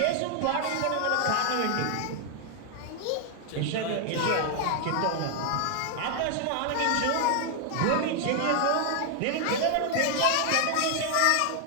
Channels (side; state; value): both; different; correlation 0.00